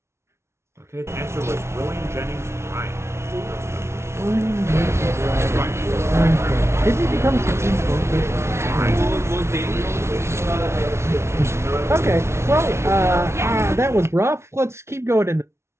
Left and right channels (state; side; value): late; left; 0.13 ms